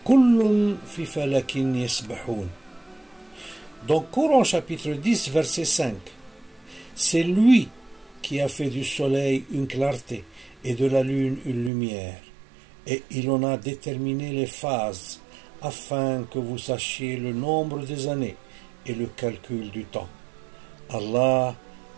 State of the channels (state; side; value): drops out; left; at 11.7 s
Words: في فلك يسبحون. Dans Coran chapitre 10 verset 5, c'est lui qui a fait du soleil une clarté et de la lune une lumière, et il en a déterminé les phases afin que vous sachiez le nombre des années et le calcul du temps. Allah